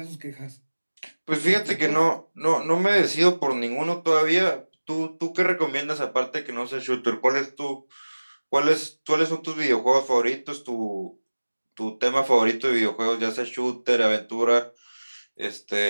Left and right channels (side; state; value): both; inverted; correlation -1.00